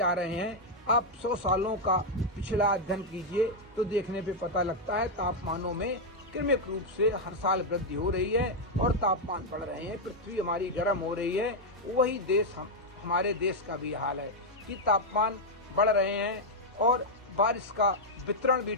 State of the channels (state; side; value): normal; both; correlation -0.01